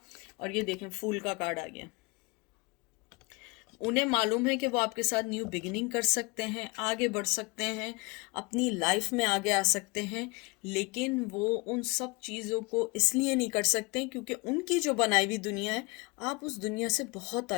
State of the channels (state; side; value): quieter; right; 27.1 dB